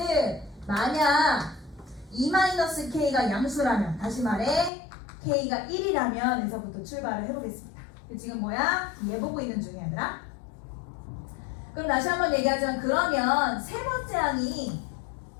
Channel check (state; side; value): drops out; right; at 4.7 s